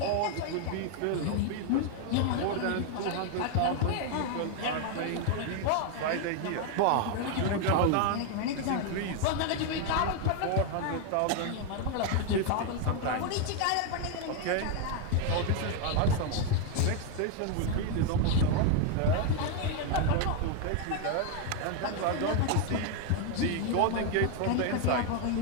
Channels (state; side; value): different; both; correlation 0.00